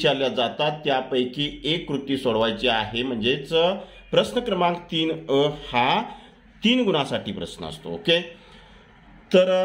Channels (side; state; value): both; identical; correlation 1.00